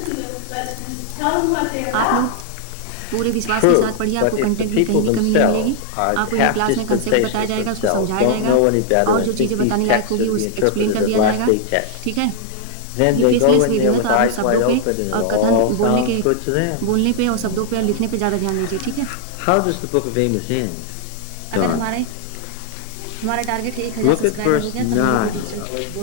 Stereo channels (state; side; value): different; both; correlation 0.00